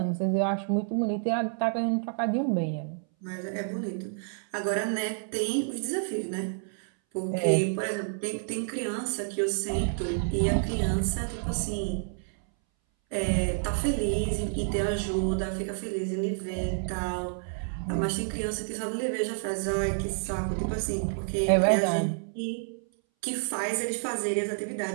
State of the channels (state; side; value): silent; left; 58 dB below the other